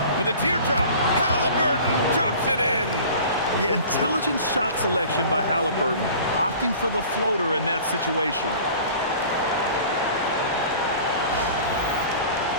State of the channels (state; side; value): inverted; both; correlation -0.43